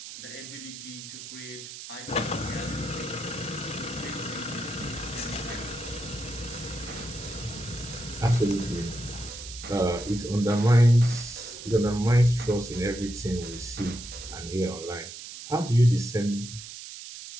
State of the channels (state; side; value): noise; right; hiss, 12 dB below the sound